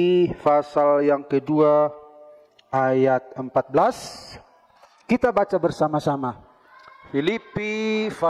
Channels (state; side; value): identical; both; correlation 1.00